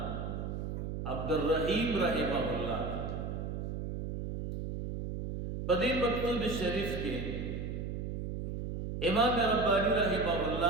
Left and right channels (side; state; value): right; noise; hum, 4 dB below the sound